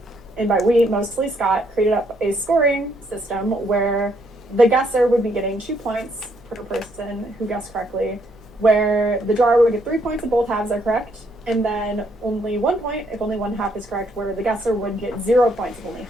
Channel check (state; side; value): normal; both; correlation 0.71